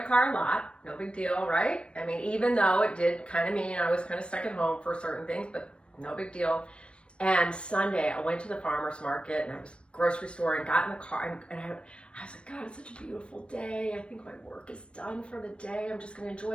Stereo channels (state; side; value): late; right; 0.058 ms